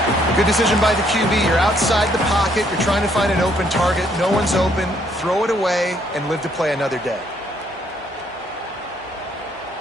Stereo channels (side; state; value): both; normal; correlation 0.68